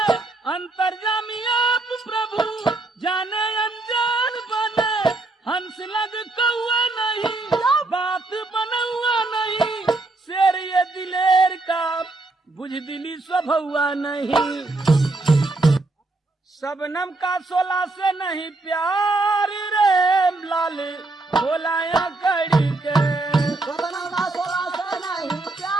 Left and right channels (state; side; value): quieter; left; 3.1 dB